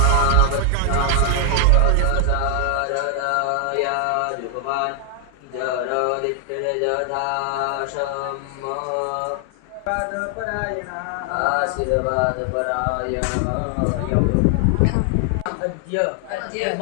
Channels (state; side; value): different; both; correlation 0.00